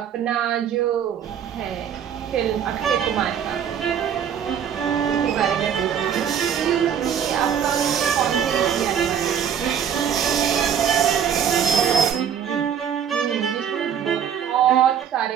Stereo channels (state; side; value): quieter; left; 8.4 dB